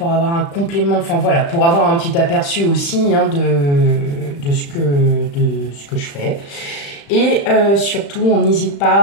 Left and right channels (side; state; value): right; late; 35 ms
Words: avoir un complément, enfin voilà, pour avoir un petit aperçu aussi de ce que je fais. Et surtout, on n'hésite